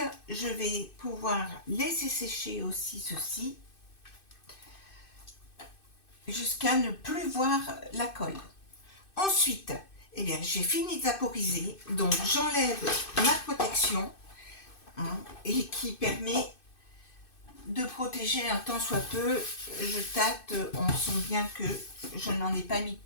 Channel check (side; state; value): right; late; 2.6 ms